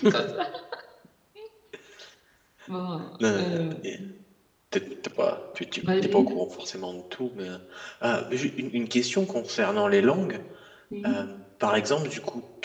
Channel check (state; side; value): identical; both; correlation 1.00